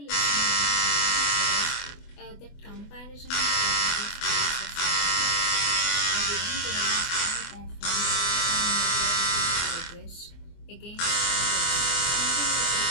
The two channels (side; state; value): right; late; 24 ms